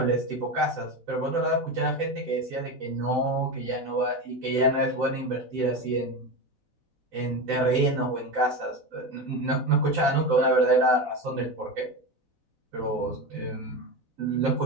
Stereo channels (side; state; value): left; late; 4.0 ms